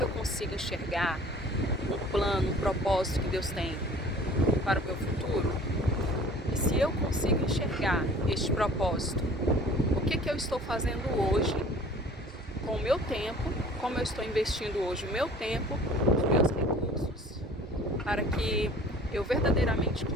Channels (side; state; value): both; normal; correlation 0.48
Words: eu consigo enxergar um plano, um propósito que Deus tem para o meu futuro? E se eu consigo enxergar este propósito, o que eu estou fazendo hoje com o meu tempo, como eu estou investindo hoje o meu tempo, os meus recursos, para que eu verdadeiramente